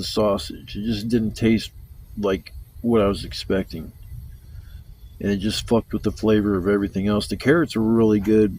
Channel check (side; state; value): both; identical; correlation 1.00